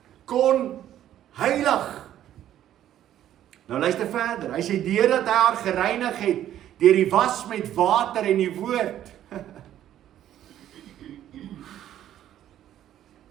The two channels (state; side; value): quieter; left; 11.7 dB